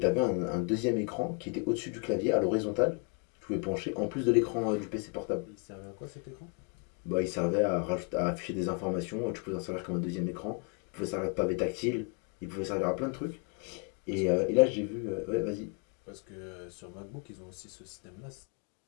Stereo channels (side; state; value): right; quieter; 35.7 dB